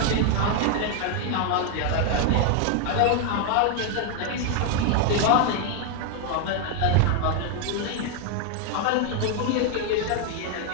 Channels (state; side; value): different; both; correlation 0.01